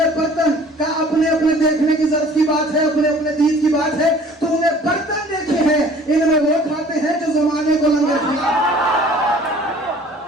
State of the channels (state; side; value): normal; both; correlation 0.51